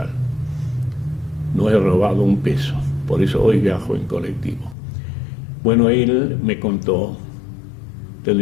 No he robado un peso, por eso hoy viajo en colectivo. Bueno, él me contó,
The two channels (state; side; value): drops out; right; at 4.8 s